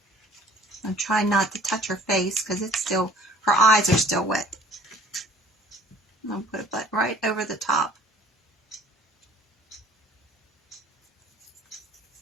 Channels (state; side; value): normal; both; correlation 0.53